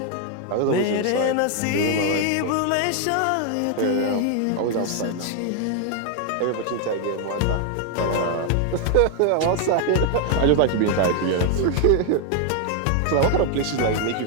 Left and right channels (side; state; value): both; different; correlation 0.00